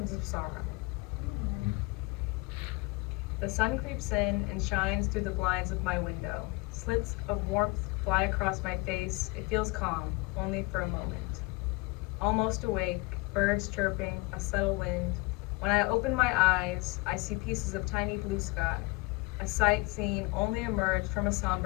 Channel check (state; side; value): quieter; right; 24.8 dB